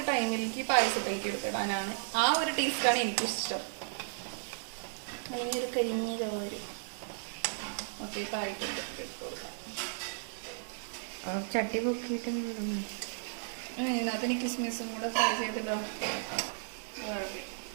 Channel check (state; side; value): silent; left; digital silence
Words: ടൈമിലേക്ക് പായസത്തിലേക്ക് എടുത്തിടാനാണ് ആ ഒരു ടേസ്റ്റാണ് എനിക്കിഷ്ടം. അല്ലെങ്കിൽ ഒരു കരിഞ്ഞ ചോര് ഒക്കെ ആയിട്ടുണ്ട് ഇട്ട് കൊടുക്കാം. ചട്ടി പൊക്കിയിട്ട് ഇതിനകത്ത് എനിക്ക് കിസ്മിസും കൂടെ ഫ്രൈ ചെയ്തിട്ടോ.